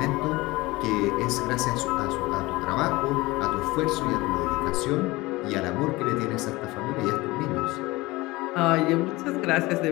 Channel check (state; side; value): quieter; right; 21.0 dB